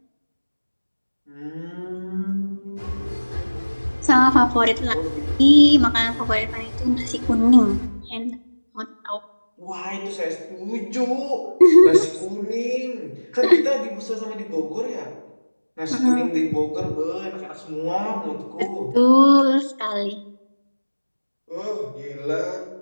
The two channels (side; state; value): both; inverted; correlation -1.00